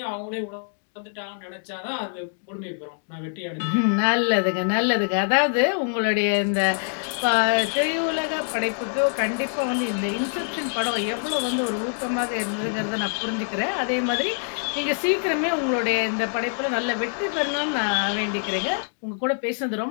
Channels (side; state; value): right; silent; digital silence